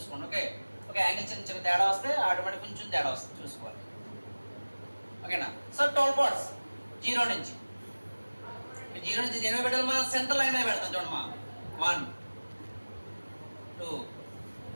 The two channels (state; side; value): inverted; both; correlation -1.00